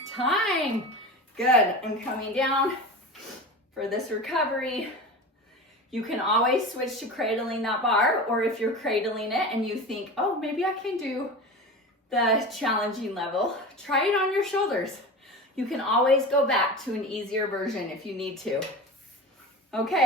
Time. Good. And coming down for this recovery. You can always switch to cradling that bar, or if you're cradling it and you think, oh, maybe I can do the challenging level, try it on your shoulders. You can always go back to an easier version if you need to.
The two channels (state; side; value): normal; both; correlation 0.30